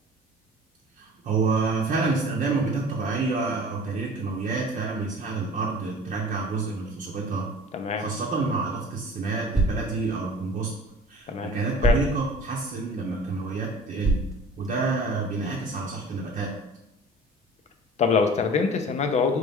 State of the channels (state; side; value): normal; both; correlation 0.43